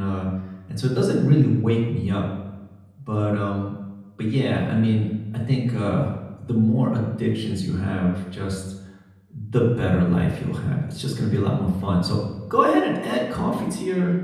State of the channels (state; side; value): identical; both; correlation 1.00